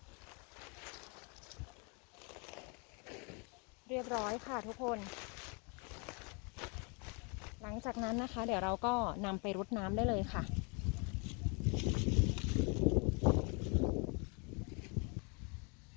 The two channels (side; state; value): right; quieter; 33.1 dB